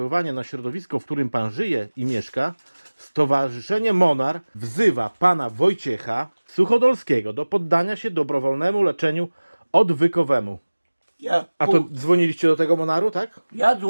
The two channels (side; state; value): both; inverted; correlation -1.00